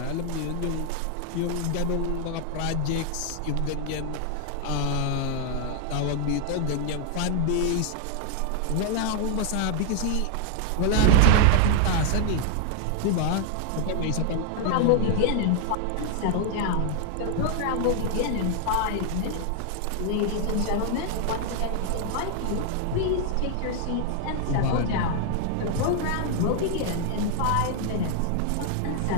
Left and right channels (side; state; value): both; different; correlation 0.00